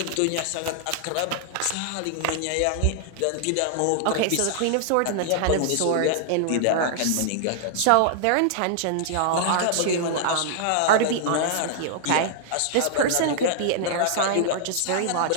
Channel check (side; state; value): both; different; correlation -0.01